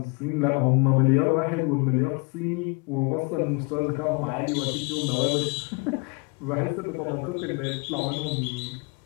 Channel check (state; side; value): quieter; right; 31.8 dB